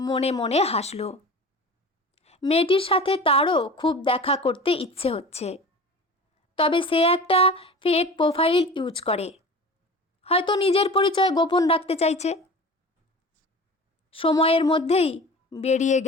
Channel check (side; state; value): both; normal; correlation 0.37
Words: মনে হাসল। মেয়েটির সাথে তারও খুব দেখা করতে ইচ্ছে হচ্ছে, তবে সে একটা ফেক প্রোফাইল ইউজ করে, হয়তো নিজের পরিচয় গোপন রাখতে চাইছে। সময়ের মধ্যেই বেরিয়ে